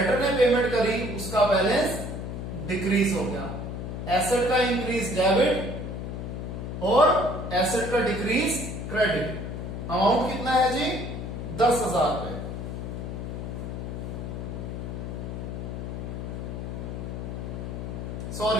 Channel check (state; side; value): noise; left; hum, 5 dB below the sound